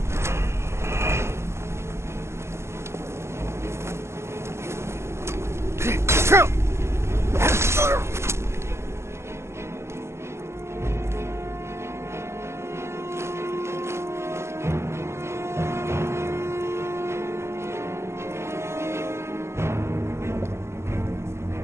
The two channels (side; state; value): left; late; 0.13 ms